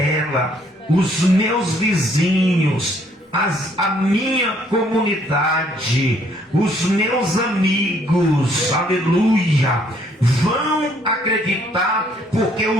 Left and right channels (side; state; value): both; normal; correlation 0.65